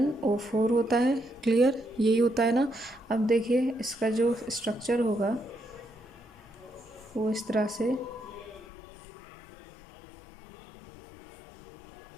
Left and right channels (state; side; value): drops out; right; at 8.7 s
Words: होता है, क्लियर, यही होता है ना। अब देखिए इसका जो स्ट्रक्चर होगा वो इस तरह से